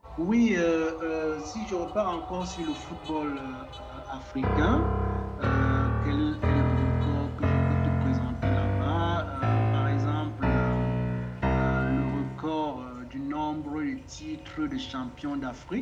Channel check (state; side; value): identical; both; correlation 1.00